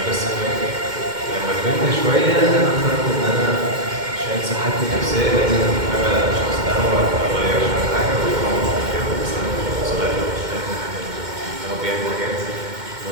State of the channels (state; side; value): late; left; 2.1 ms